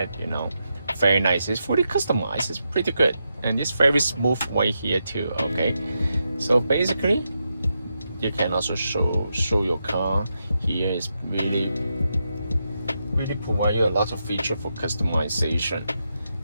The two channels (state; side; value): inverted; both; correlation -0.85